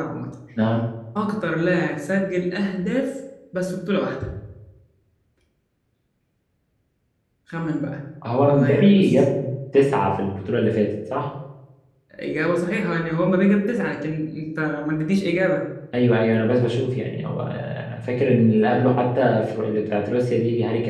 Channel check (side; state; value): both; identical; correlation 1.00